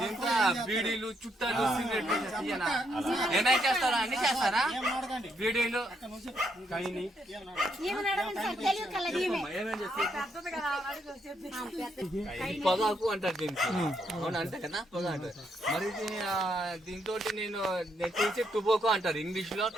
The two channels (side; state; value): both; normal; correlation 0.75